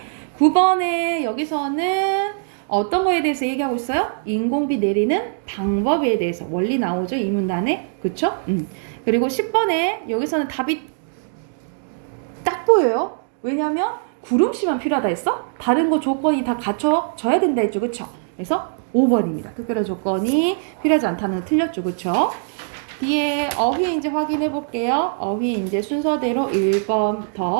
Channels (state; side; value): silent; left; digital silence